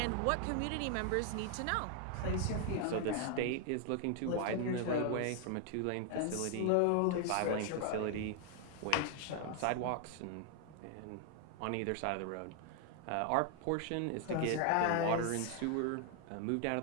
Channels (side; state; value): both; different; correlation 0.00